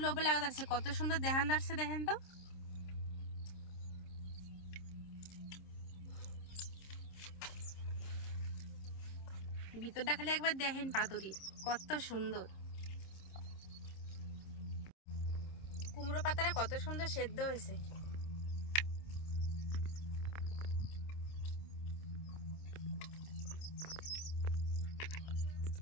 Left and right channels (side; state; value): right; late; 26 ms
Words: লোভে লাগা যাচ্ছে, কত সুন্দর দেখান যাচ্ছে। দেখেন তো ভিতরটা খালি একবার দেখেন পাতুরির কত সুন্দর। কুমড়ো পাতাটা কত সুন্দর সেদ্ধ হয়েছে।